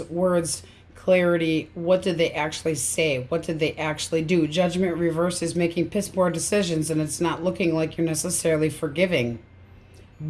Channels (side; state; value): both; identical; correlation 1.00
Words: words, clarity. What did they actually say? What did they actually do? Judgment reverse is making piss poor decisions, and it's not looking like you're necessarily forgiving.